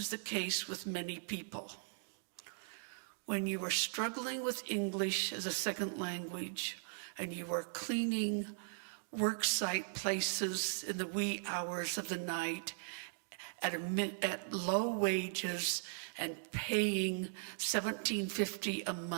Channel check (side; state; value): left; silent; digital silence